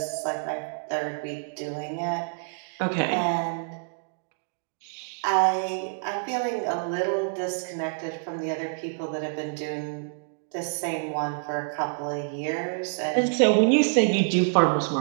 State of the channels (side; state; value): left; silent; digital silence